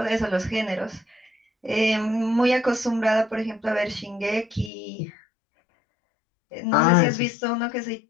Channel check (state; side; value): drops out; right; at 4.7 s